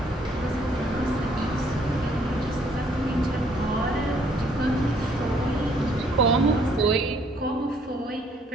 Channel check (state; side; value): normal; both; correlation 0.65